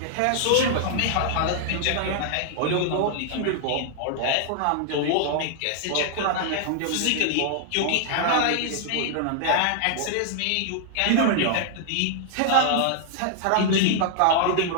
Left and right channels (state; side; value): different; both; correlation -0.01